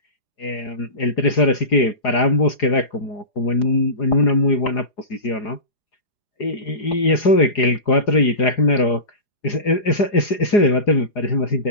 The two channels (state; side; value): late; right; 4.8 ms